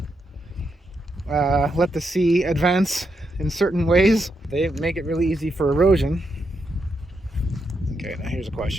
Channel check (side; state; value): both; normal; correlation 0.82